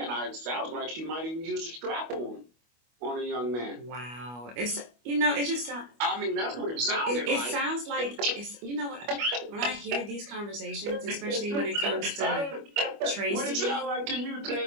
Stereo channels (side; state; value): left; late; 25 ms